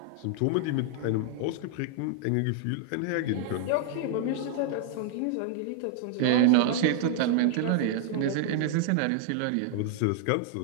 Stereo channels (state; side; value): different; both; correlation 0.00